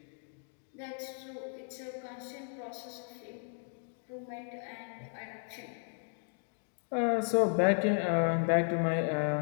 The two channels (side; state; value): right; silent; 55 dB below the other